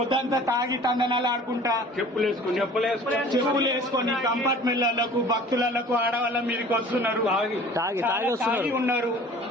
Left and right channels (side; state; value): both; normal; correlation 0.46